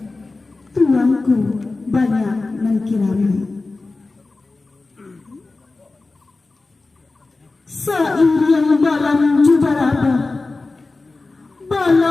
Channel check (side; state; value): right; quieter; 3.5 dB